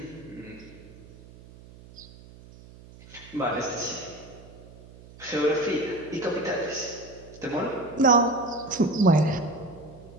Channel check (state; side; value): noise; right; hum, 20 dB below the sound